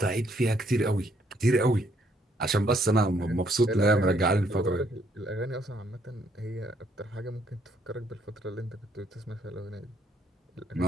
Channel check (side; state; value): both; normal; correlation 0.69